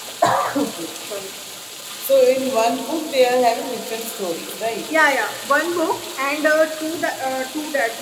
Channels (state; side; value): identical; both; correlation 1.00